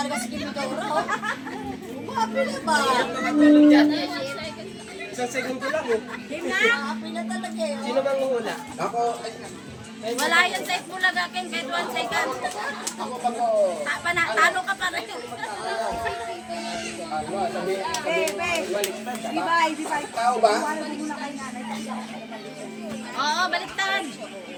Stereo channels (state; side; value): identical; both; correlation 1.00